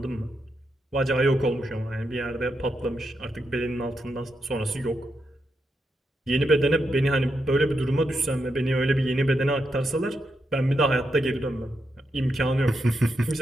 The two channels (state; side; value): normal; both; correlation 0.84